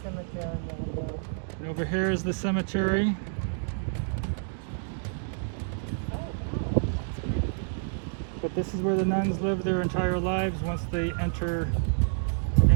cemetery over there. And over here is the cemetery. But this is where the nuns live their entire lives once they enter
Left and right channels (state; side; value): silent; left; digital silence